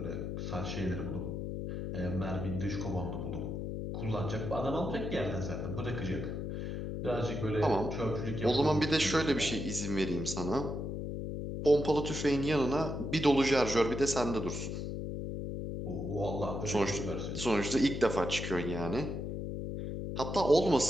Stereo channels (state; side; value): noise; left; hum, 4 dB below the sound